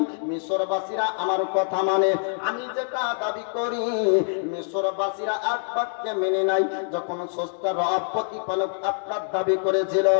মিশরবাসীরা আমার কথা মানে, আমি যেটা দাবি করি মিশরবাসীরা এক বাক্যে মেনে নাই। যখন স্রষ্টা রব প্রতিপালক আপনার দাবি করেছিল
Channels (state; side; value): silent; right; digital silence